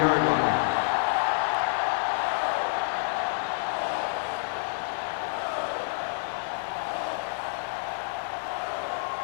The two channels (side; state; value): right; silent; digital silence